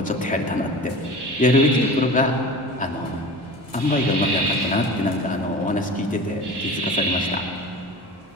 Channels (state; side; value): normal; both; correlation 0.35